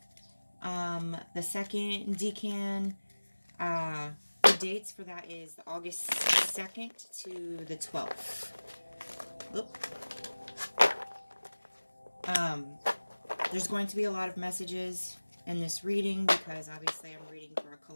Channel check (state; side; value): inverted; both; correlation -1.00